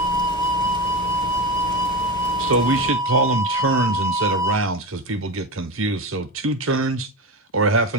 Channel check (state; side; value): normal; both; correlation 0.21